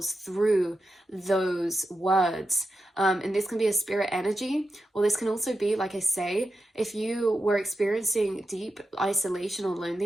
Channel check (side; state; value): both; normal; correlation 0.89